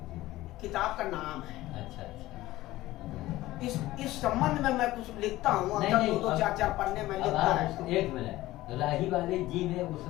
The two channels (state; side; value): quieter; right; 16.9 dB